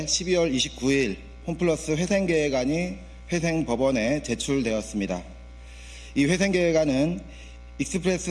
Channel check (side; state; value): both; identical; correlation 1.00